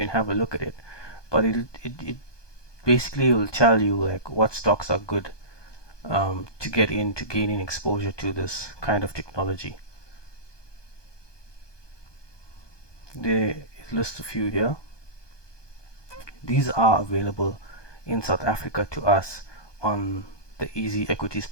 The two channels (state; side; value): late; right; 1.2 ms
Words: have a look at it. But it basically will tell you like what stocks are good to get into gaining exposure to this kind of technology. They list a few here. These are available in South Africa to us on the Easy Equities